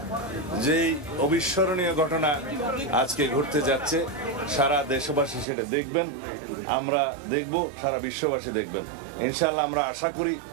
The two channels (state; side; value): drops out; left; at 5.5 s